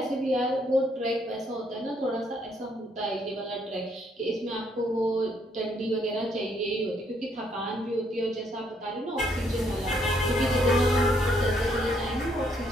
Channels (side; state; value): both; normal; correlation 0.71